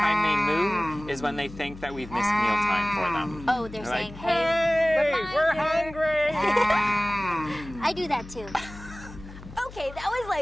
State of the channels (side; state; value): left; noise; hum, 16 dB below the sound